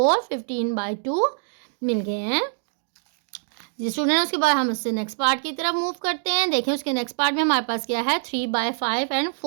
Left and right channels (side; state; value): left; silent; digital silence